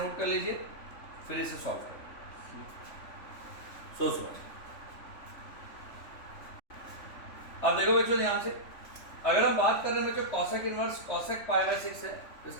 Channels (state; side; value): late; right; 3.5 ms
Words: कर लीजिए, फिर इसे सॉल्व करो, सोच समझ। अब देखो बच्चों ध्यान से, अगर हम बात कर रहे हैं बच्चों कॉसेक इनवर्स कॉसेक π/6 है, तो